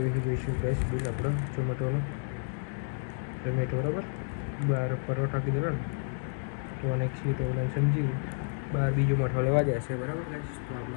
છે. જોઈશું ગાઈસ બિલ આપણો ઝોમેટોનો. બરાબર 12 પરોઠા કીધેલા ને, તો અને 1 સીટ ઓવલાઈન સમજી 12 બીજો મઠો લેવા જાય છે. બરાબર ગાઈસ. તો આપણો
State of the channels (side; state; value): right; silent; digital silence